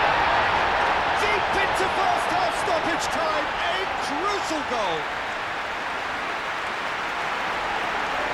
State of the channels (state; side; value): identical; both; correlation 1.00